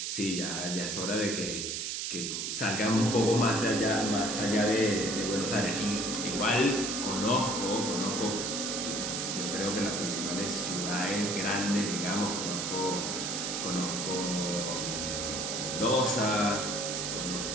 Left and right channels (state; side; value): noise; right; hiss, 2 dB below the sound